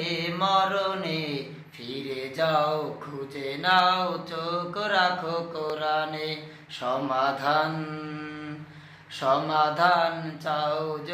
মরণে, ফিরে যাও খুঁজে নাও চোখ রাখো কোরআনে। সমাধান চাও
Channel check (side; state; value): both; identical; correlation 1.00